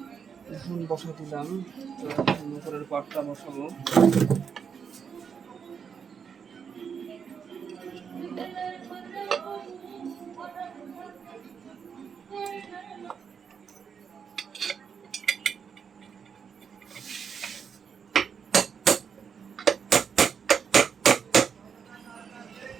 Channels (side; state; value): left; quieter; 6.8 dB